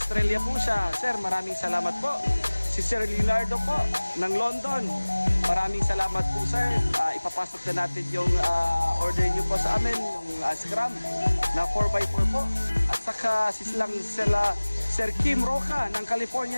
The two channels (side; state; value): both; inverted; correlation -1.00